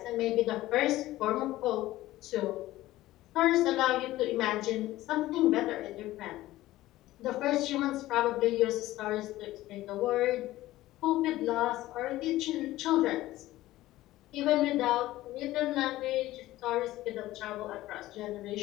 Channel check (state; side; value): quieter; right; 16.3 dB